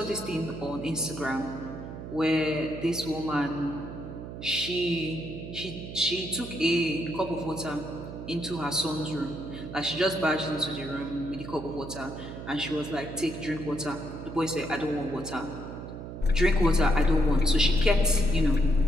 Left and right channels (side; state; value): right; noise; hum, 10 dB below the sound